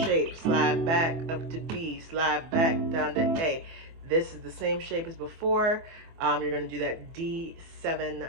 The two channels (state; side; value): late; left; 24 ms